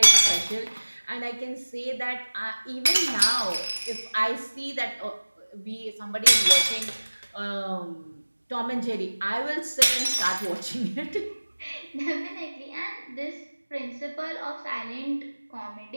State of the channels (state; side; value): inverted; both; correlation -1.00